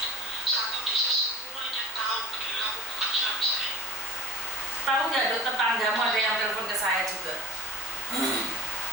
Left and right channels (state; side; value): normal; both; correlation 0.39